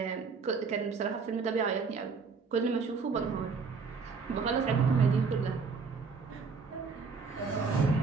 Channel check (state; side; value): quieter; left; 5.1 dB